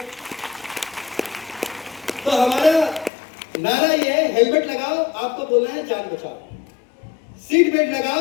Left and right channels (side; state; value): right; drops out; at 3.1 s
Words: तो हमारा नारा ये है, हेलमेट लगाओ, आपको बोलना है जान बचाओ। सीट बेल्ट